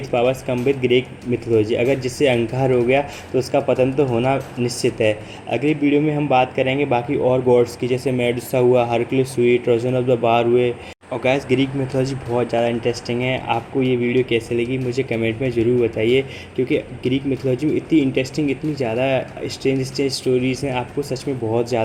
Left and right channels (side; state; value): both; identical; correlation 1.00